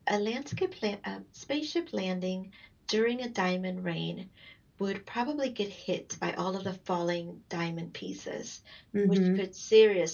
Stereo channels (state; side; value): identical; both; correlation 1.00